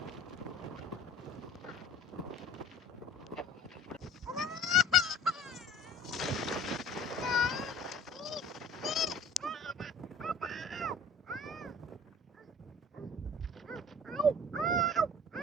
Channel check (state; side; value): normal; both; correlation 0.47